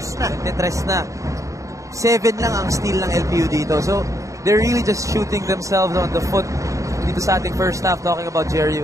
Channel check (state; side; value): late; left; 0.16 ms